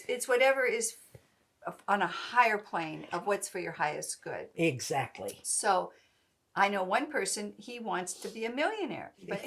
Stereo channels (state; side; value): identical; both; correlation 1.00